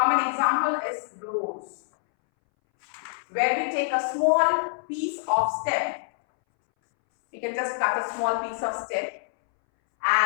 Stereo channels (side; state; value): right; silent; 61 dB below the other